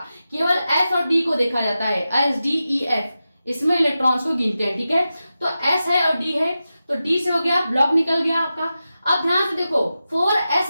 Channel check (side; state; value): both; inverted; correlation -0.92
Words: केवल s और d को देखा जाता है, s d e f, इसमें इलेक्ट्रॉन्स को गिनते हैं। ठीक है, तो s है और d है, तो d से हो गया, ब्लॉक निकल गया आपका। अब ध्यान से देखो